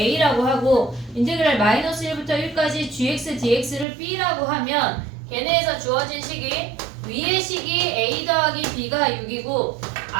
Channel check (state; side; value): drops out; left; at 3.9 s